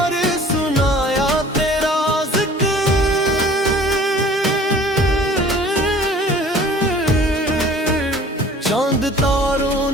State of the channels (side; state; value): both; normal; correlation 0.49